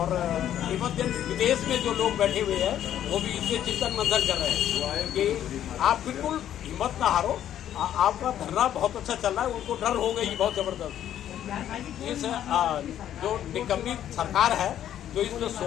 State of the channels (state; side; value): quieter; right; 11.0 dB